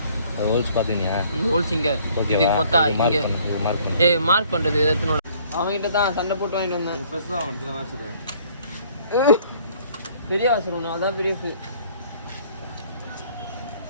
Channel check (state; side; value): inverted; both; correlation -0.59